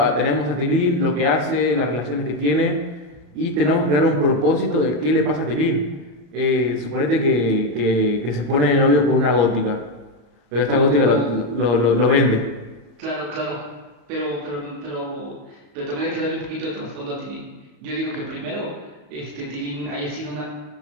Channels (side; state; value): left; late; 34 ms